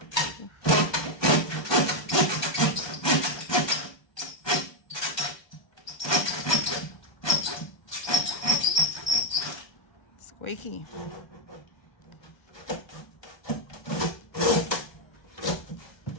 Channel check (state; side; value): late; right; 1.2 ms